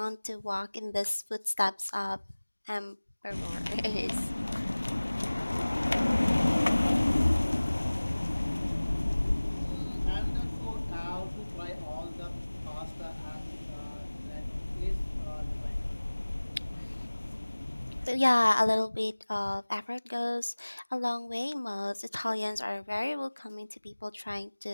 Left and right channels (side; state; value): both; inverted; correlation -1.00